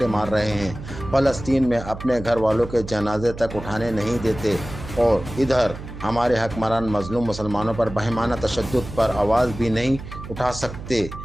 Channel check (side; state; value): right; noise; hum, 11 dB below the sound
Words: मार रहे हैं। फ़लस्तीन में अपने घर वालों के जनाजे तक उठाने नहीं देते और इधर हमारे हकमरान मजलूम मुसलमानों पर बहिमाना तशद्दुद पर आवाज़ भी नहीं उठा सकते।